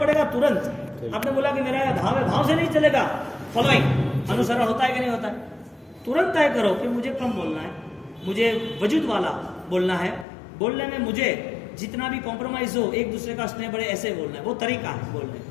तुरंत। आपने बोला कि मेरा भाव है, भाव से नहीं चलेगा। फॉलोइंग अनुसरण होता है कि नहीं होता है? तुरंत तय करो कि मुझे कम बोलना है, मुझे वजूद वाला बोलना है। बोलने में मुझे जितना भी कॉम्प्रोमाइज हो, एक दूसरे का स्नेह बढ़े, ऐसे बोलना है। वो तरीका है बोलने का।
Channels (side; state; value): right; drops out; at 10.2 s